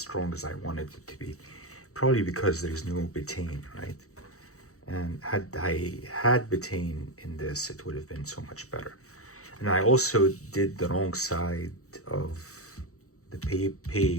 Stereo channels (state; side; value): late; right; 0.65 ms